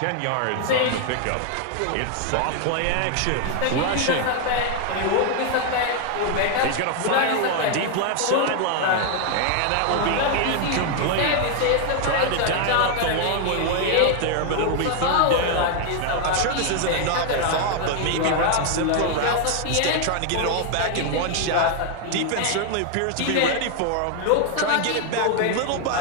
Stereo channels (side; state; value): both; different; correlation 0.00